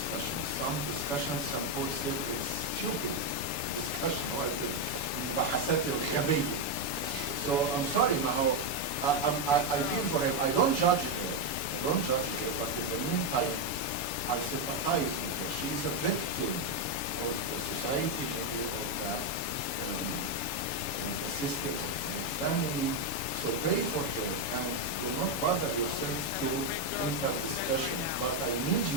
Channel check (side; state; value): right; late; 7.0 ms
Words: Some discussions, some folks say it's stupid discussion, like المباحثات الغبية. So I'm sorry, Maho. I feel for him. I don't judge her. But in the meantime, I sympathize with her. She is a victim of the society, maybe of the system of her family. So pray for her and do not bother yourself to enter discussion. But I need